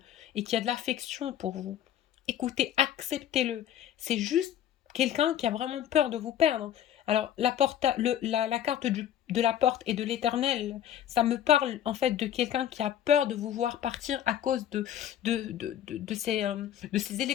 et qui a de l'affection pour vous. Écoutez, acceptez-le. C'est juste quelqu'un qui a vraiment peur de vous perdre. Alors, la carte de la porte et de l'éternel, ça me parle en fait de quelqu'un qui a peur de vous voir partir à cause de ces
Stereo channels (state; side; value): quieter; right; 10.6 dB